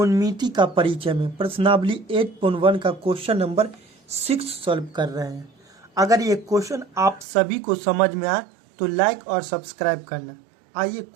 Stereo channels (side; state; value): left; drops out; at 7.2 s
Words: का परिचय में प्रश्नावली 8.1 का क्वेश्चन नंबर 6 सॉल्व कर रहे हैं। अगर ये क्वेश्चन आप सभी को समझ में आए तो लाइक और सब्सक्राइब करना। आइए